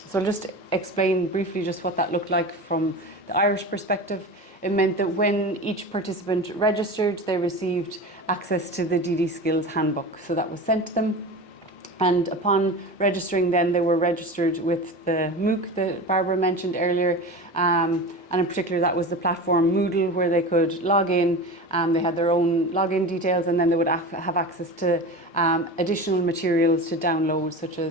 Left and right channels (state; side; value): normal; both; correlation 0.30